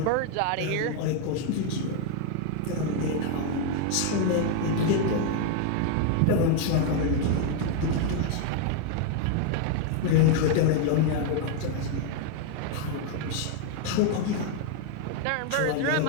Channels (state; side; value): different; both; correlation 0.00